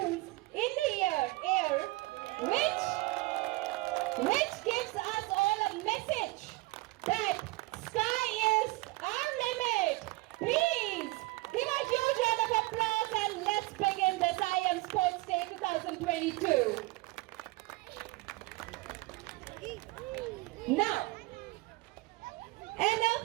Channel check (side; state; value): left; quieter; 21.7 dB